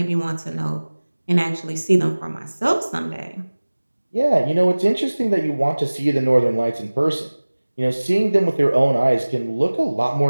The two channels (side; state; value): both; inverted; correlation -1.00